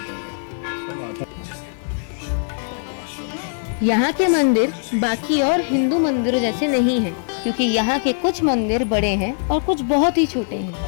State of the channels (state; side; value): silent; right; digital silence